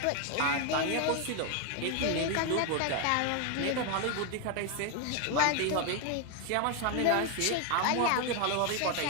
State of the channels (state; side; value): different; both; correlation 0.01